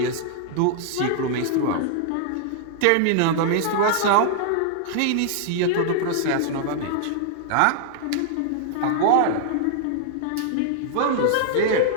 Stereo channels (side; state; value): both; different; correlation -0.01